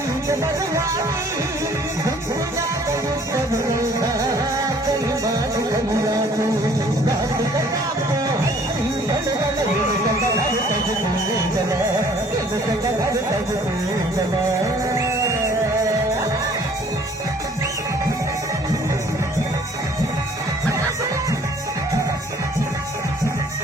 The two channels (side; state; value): both; normal; correlation 0.56